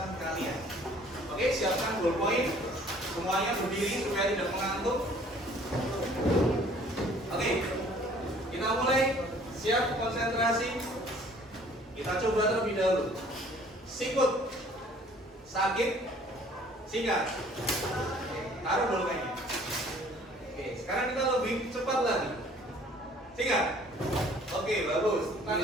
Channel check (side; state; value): both; normal; correlation 0.55